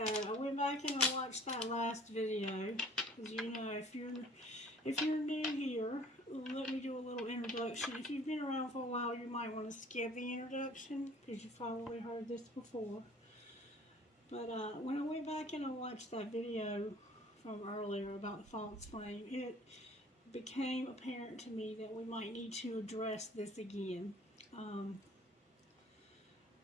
I went back and I watched that last video. As you know, if you're new here, let me do a little introduction. If you've been around for a while, you might want to skip the introduction because you've probably heard this before. But when I went back and I watched that video from earlier about the false flame, it became apparent to me that we might need to address this again.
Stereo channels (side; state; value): both; normal; correlation 0.52